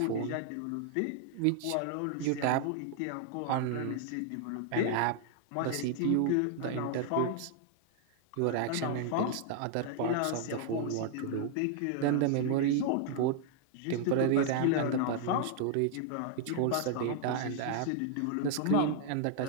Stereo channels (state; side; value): different; both; correlation 0.00